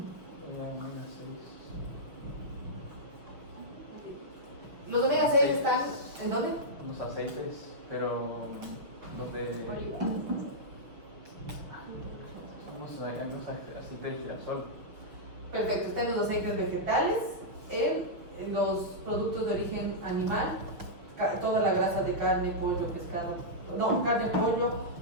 Los omega 6 están ¿en dónde? Los aceites, pero los de... Oliva. Los aceites de girasol. Perfecto, están los aceites vegetales, en los productos de origen animal, toda la grasa de carne, pollo, pescado, no, carne, pollo,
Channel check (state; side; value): late; left; 6.2 ms